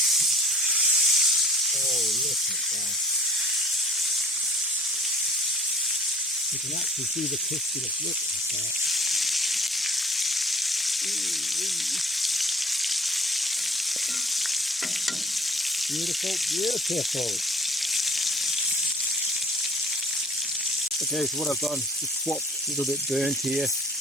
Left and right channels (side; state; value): both; normal; correlation 0.50